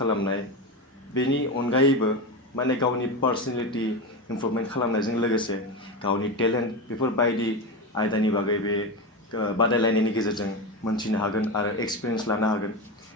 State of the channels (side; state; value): both; normal; correlation 0.19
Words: बेनि अनगायैबो माने गावनि पार्सनेलिटी इमप्रुभमेन्ट खालामनायजों लोगोसे गावनि टेलेन्ट बेफोरबायदि आयदानि बागै बे बादायलायनायनि गेजेरजों मोनथिनो हागोन आरो एक्सपिरियेन्स लानो हागोन